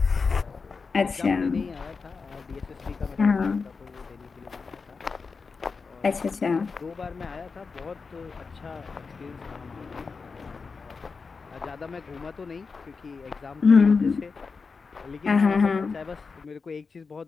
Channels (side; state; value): right; quieter; 4.8 dB